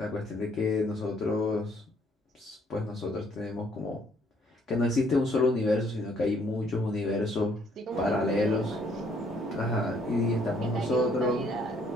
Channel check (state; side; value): normal; both; correlation 0.65